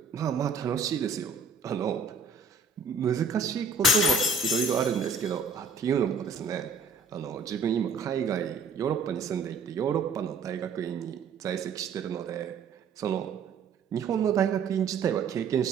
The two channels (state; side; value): quieter; left; 4.6 dB